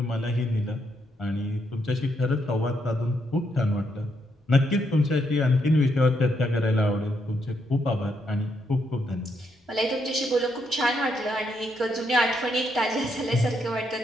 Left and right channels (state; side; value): normal; both; correlation 0.77